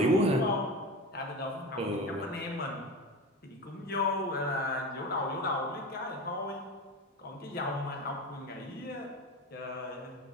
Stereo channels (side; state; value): both; normal; correlation 0.27